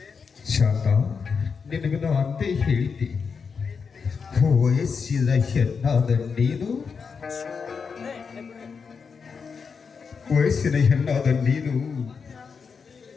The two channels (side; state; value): right; quieter; 5.7 dB